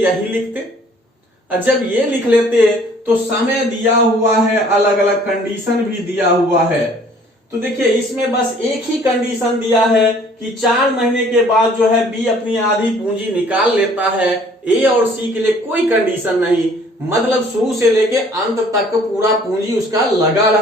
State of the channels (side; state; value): both; normal; correlation 0.56